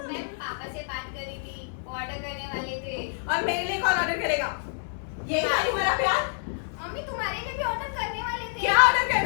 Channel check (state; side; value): silent; right; digital silence